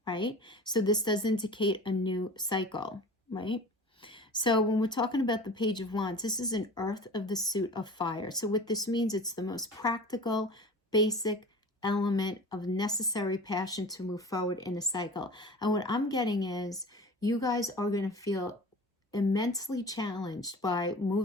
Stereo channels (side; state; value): both; normal; correlation 0.38